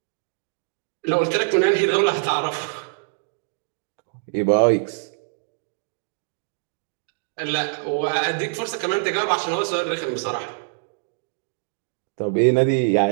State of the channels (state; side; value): silent; left; digital silence